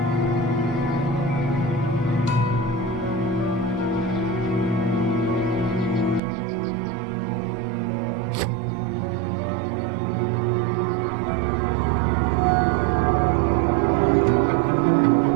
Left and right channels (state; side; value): drops out; left; at 6.2 s